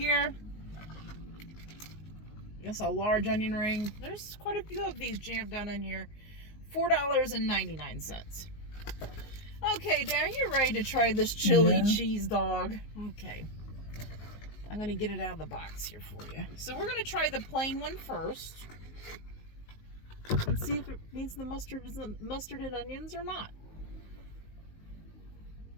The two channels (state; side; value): late; right; 19 ms